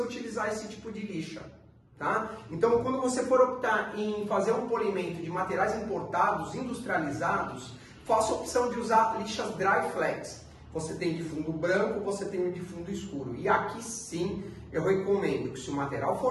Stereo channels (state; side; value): identical; both; correlation 1.00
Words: esse tipo de lixa. Tá? Então, quando você for optar em fazer um polimento de materiais importados, industrializados, faça a opção de usar lixas Dry Flex. Você tem de fundo branco, você tem de fundo escuro. E aqui sim, eu recomendo que se o material